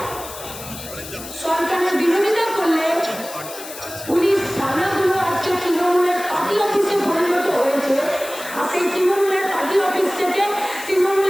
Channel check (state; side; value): noise; left; hiss, 13 dB below the sound